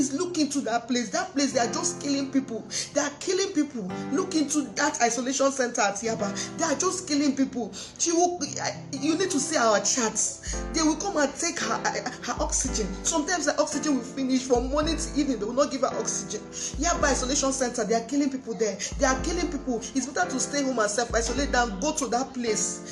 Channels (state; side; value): identical; both; correlation 1.00